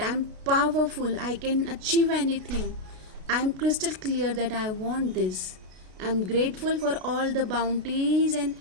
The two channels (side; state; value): left; late; 32 ms